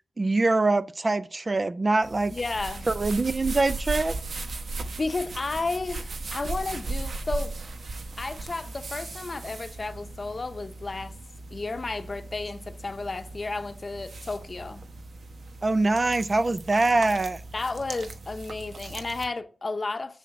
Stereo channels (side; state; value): both; normal; correlation 0.95